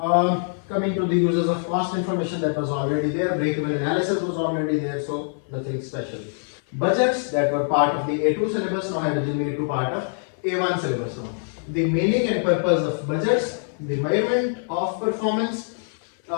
Coming to the uses of cost information, that was already there. Break-even analysis was already there, so nothing special. Budgets that were part of the A2 syllabus now have been made to part of A1 syllabus now. The meaning and purpose of budgets, the measurement of performance,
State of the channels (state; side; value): silent; right; 63 dB below the other